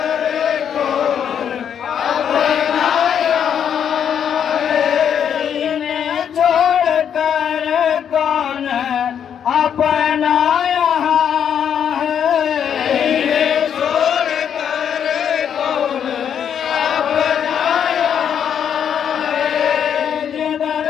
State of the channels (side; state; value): right; quieter; 8.5 dB